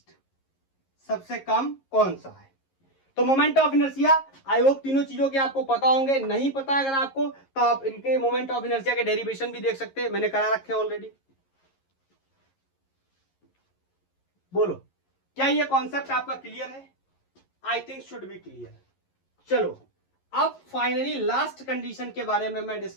सबसे कम कौन सा है। तो moment of inertia, I hope तीनों चीजों के आपको पता होंगे। नहीं पता अगर आपको तो आप इनके मोमेंट ऑफ इनर्शिया के डेरिवेशन भी देख सकते हैं, मैंने करा रखे ऑलरेडी। बोलो क्या ये कॉन्सेप्ट आपका क्लियर है? I think should be clear. चलो अब फाइनली लास्ट कंडीशन के बारे में मैं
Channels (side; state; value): right; late; 11 ms